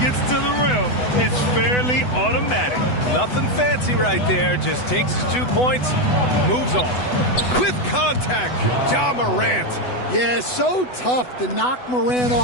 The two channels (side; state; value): right; late; 8.0 ms